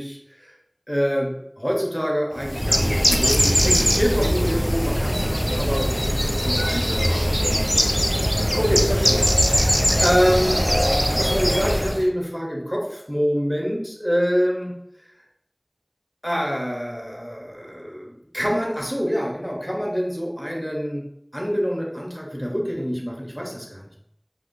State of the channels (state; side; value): identical; both; correlation 1.00